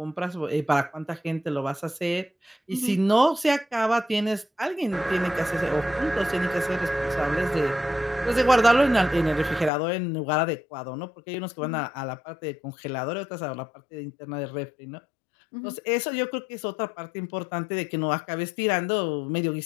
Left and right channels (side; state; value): right; drops out; at 9.7 s